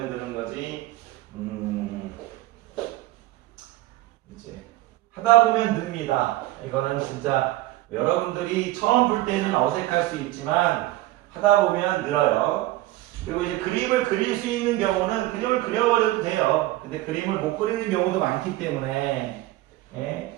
느는 거지. 이제 하다 보면 늡니다. 이거는 진짜 여러분들이 처음 볼 때는 어색할 수 있지만 하다 보면 늘어요. 그리고 이제 그림을 그릴 수 있는 경우는 그림을 그려버려도 돼요. 근데 그림을 못 그리는 경우도 많기 때문에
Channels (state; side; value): quieter; left; 16.9 dB